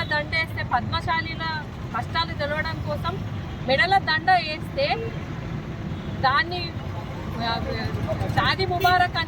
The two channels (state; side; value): identical; both; correlation 1.00